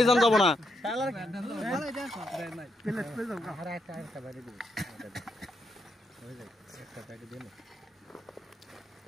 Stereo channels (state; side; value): normal; both; correlation 0.79